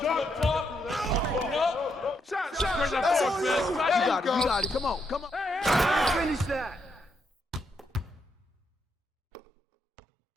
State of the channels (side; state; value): both; normal; correlation 0.79